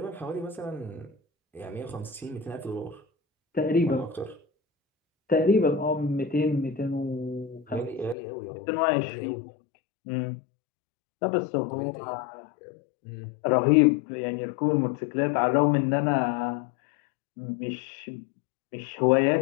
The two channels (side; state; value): right; drops out; at 8.2 s